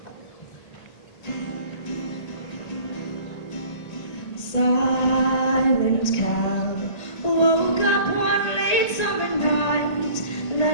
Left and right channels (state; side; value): late; right; 1.8 ms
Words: Silent Cal woke up one late summer night.